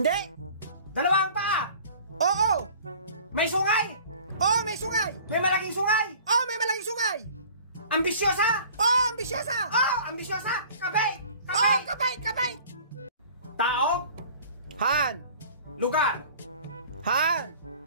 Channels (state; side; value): inverted; both; correlation -0.47